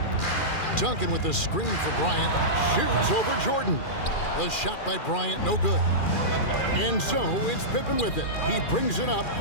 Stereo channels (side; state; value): right; late; 2.4 ms